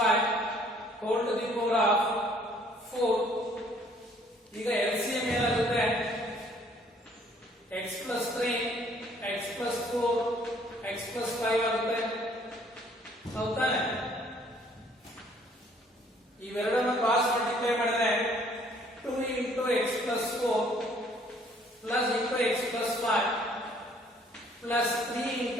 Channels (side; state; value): both; normal; correlation 0.60